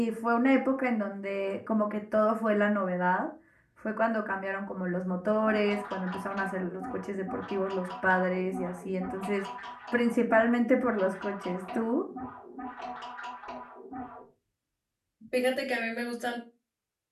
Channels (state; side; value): identical; both; correlation 1.00